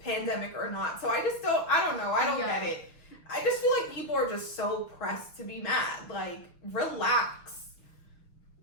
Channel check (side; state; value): right; late; 6.1 ms